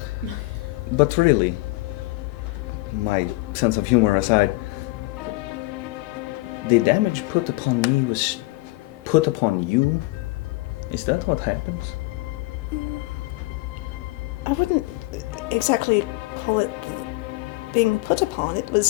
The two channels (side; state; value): right; quieter; 22.0 dB